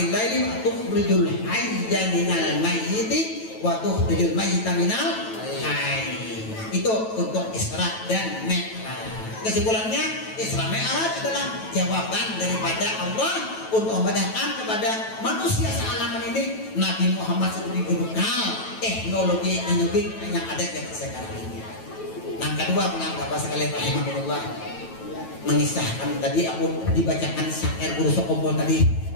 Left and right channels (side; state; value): right; late; 9.1 ms